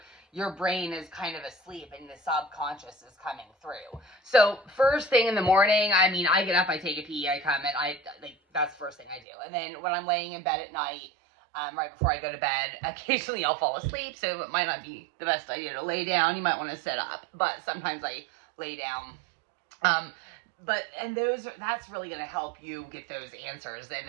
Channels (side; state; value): left; drops out; at 9.2 s